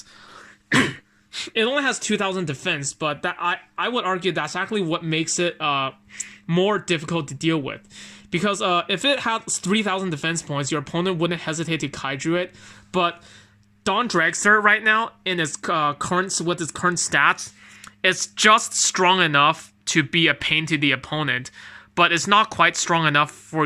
It only has 2,000 defense, but that I would argue that's actually what makes it more difficult to deal with. Because if it had 3,000 defense points, your opponent wouldn't hesitate to kaiju it. But Dawn Dragster right now, in its current stats, it's just strong enough to be a pain to the opponent, but it's not quite strong enough for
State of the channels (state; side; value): identical; both; correlation 1.00